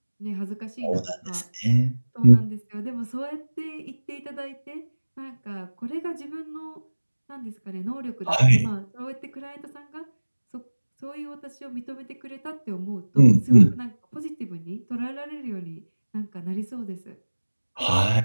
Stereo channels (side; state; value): both; inverted; correlation -1.00